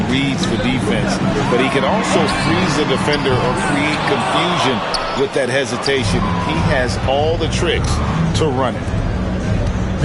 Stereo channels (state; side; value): identical; both; correlation 1.00